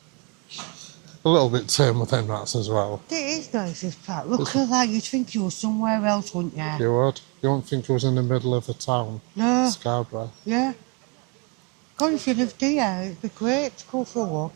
A little bit tame with them rats as well. It is nice, this park. Look at that. You'd think you were somewhere else, wouldn't you? You would. You wouldn't think it was in the middle of the town. No. Scarborough. Yeah. God, if you lived here, it'd be great to go for a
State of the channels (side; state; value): left; quieter; 32.8 dB